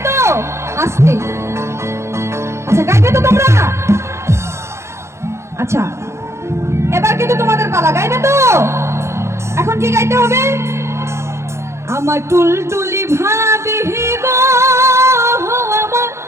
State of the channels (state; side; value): late; left; 0.13 ms